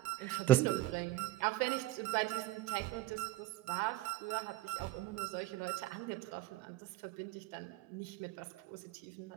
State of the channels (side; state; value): left; quieter; 16.5 dB